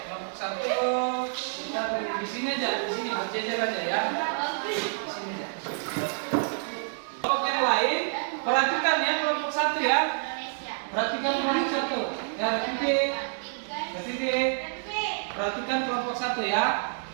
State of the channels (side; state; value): left; silent; 59 dB below the other